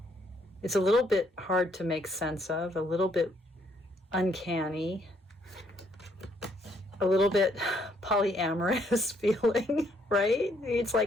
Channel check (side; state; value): both; normal; correlation 0.69